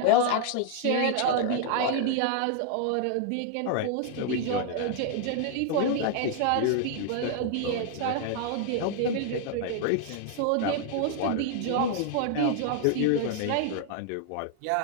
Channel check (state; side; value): different; both; correlation 0.00